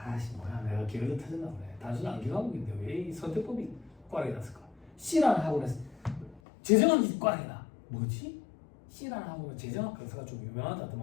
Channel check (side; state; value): right; drops out; at 6.4 s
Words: 뭐야 내가 기어도 터졌나 보네. 단순 암기 과목인데 왜 이 선택법이 꽈락이 났을까? C라는 학원에서 재정학이 꽈락이다. 뭐지? C라는 학원은 재정학 강사가 좀